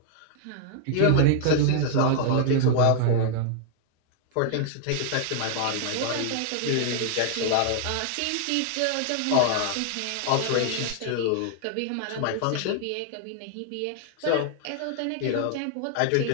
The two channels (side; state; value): both; different; correlation -0.01